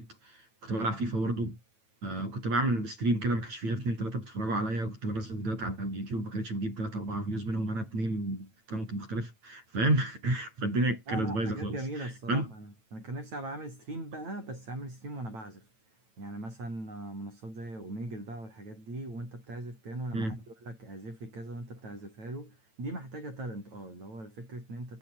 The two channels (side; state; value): left; late; 9.0 ms